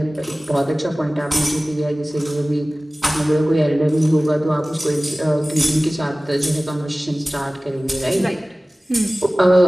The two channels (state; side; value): normal; both; correlation 0.98